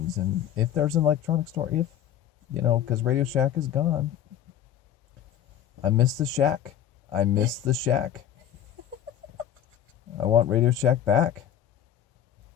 And if there's an electronic store, because Radio Shack is gone. I miss the Shack. I want Radio Shack back.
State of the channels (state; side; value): quieter; right; 10.3 dB